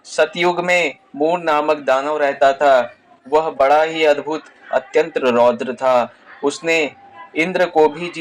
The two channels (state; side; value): identical; both; correlation 1.00